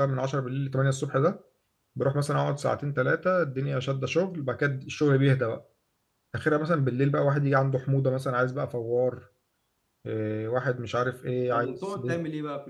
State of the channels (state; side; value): identical; both; correlation 1.00